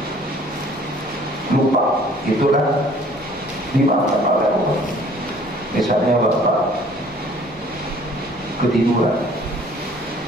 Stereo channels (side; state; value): both; normal; correlation 0.55